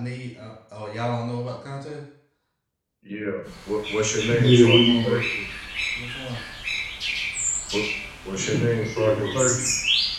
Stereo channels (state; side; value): identical; both; correlation 1.00